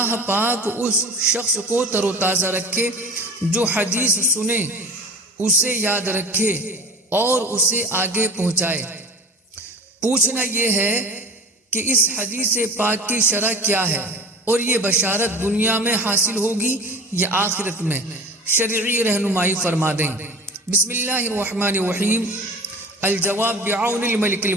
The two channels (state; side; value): normal; both; correlation 0.37